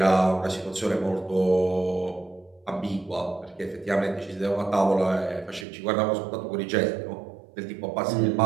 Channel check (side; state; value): left; drops out; at 5.7 s